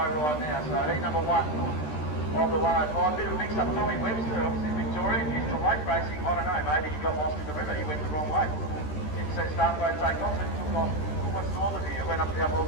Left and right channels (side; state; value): right; late; 13 ms